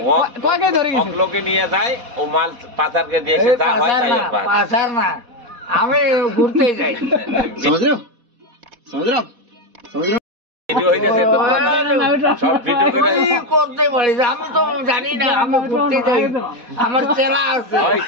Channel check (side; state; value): left; late; 4.1 ms